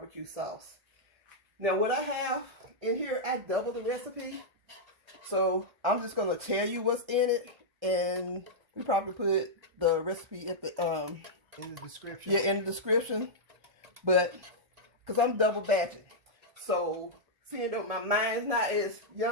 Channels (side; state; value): left; late; 1.3 ms